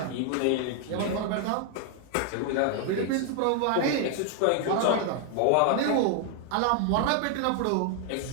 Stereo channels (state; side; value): different; both; correlation 0.00